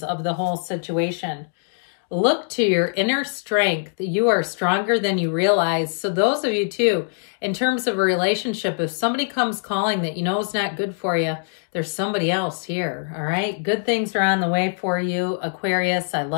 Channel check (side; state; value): right; silent; digital silence